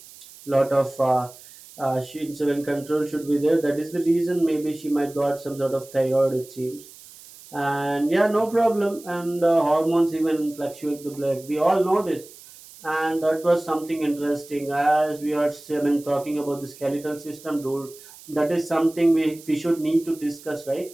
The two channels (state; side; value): noise; right; hiss, 20 dB below the sound